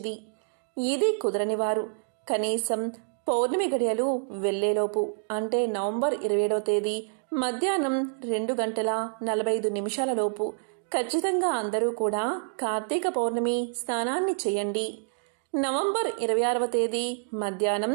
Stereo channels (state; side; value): silent; left; digital silence